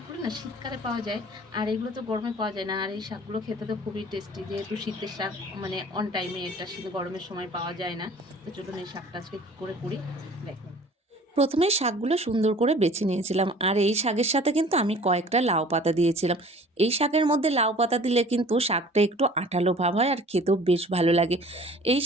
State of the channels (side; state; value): both; normal; correlation 0.48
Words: না শীতকালে পাওয়া যায়, আর এগুলো তো গরমে পাওয়া যায় না। আর এই শাকগুলো খেতে তো খুবই টেস্টি, যেহেতু শীতের শাক মানে অন টাইমে এটা শীত গরমের সময় পাওয়া যায় না। তো চলুন এই শাকটা আজকে কী করে করি দেখুন। প্রথমে শাকগুলো সুন্দর করে বেছে নিয়েছিলাম, আর এই শাকের সাথে কিন্তু আমি কয়েকটা লাউ পাতা দিয়েছিলাম। এই শাকের মধ্যে লাউ পাতা দিলে কিন্তু শাকটা একটু আঠালো ভাব হয় আর খেতেও বেশ ভালো লাগে। এই